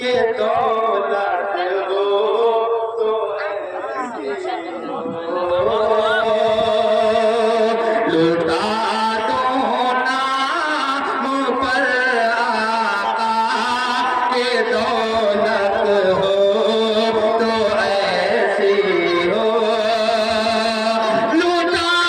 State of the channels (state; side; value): identical; both; correlation 1.00